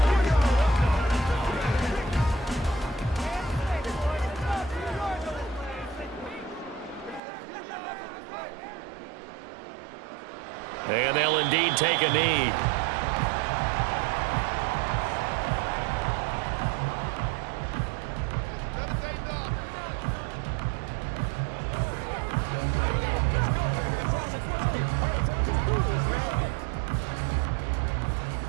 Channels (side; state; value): left; drops out; at 7.2 s